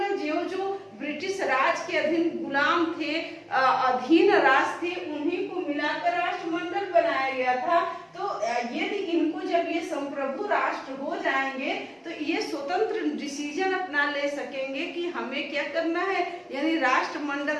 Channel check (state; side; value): identical; both; correlation 1.00